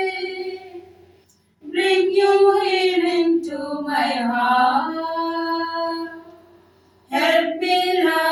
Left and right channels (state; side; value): identical; both; correlation 1.00